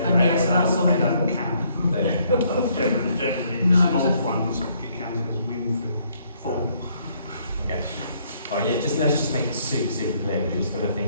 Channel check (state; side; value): inverted; both; correlation -0.67